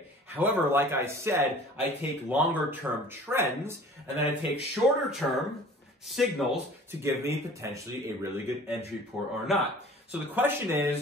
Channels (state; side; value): normal; both; correlation 0.46